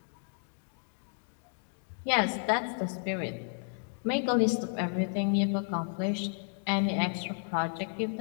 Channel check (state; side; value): silent; right; 56 dB below the other